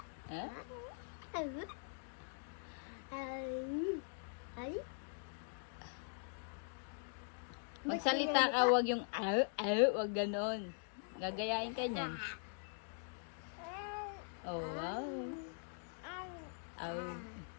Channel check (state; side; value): silent; right; digital silence